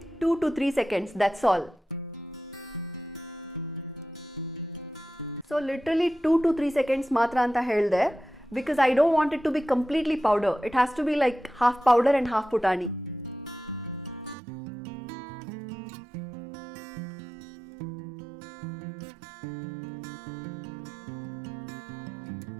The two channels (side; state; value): left; drops out; at 14.4 s